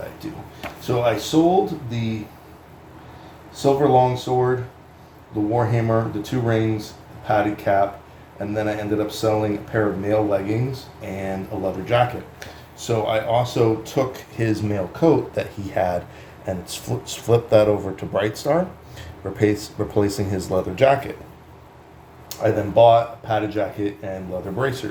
do? So I sold the silver longsword, the warhammer, the 2 rings, the padded cap, and then I ended up selling a pair of mail leggings and a leather jacket. So I also took his mail coat that he had and flipped that over to Brightstar, replacing his leather jacket. I then bought a padded jacket and leather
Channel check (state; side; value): identical; both; correlation 1.00